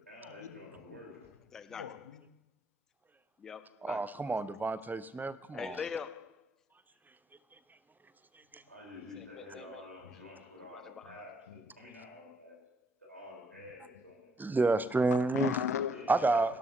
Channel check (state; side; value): normal; both; correlation 0.73